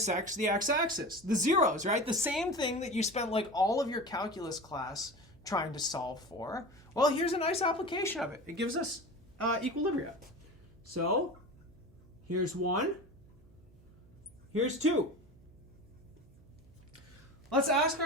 the x-axis, the zeros, right? The same thing that you spent like all of your calculus class trying to solve for. Well, here's a nice application of it. It gives us equilibria. So here's 1, here's 2. Let's ask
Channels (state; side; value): noise; right; hum, 26 dB below the sound